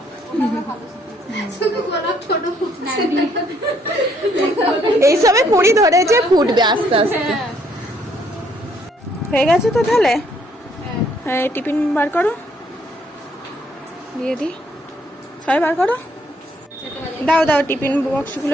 ওটা আমরা ভালো শিখেছি। শুধু গোলাপ ছোট ফুটছে। এইসবে কুড়ি ধরেছে, ফুটবে আস্তে আস্তে। হয়ে গেছে তো তাহলে। হ্যাঁ টিফিন বার করো, দিয়ে দিই। সবাই বার করো, দাও দাও টিফিন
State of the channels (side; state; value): both; normal; correlation 0.67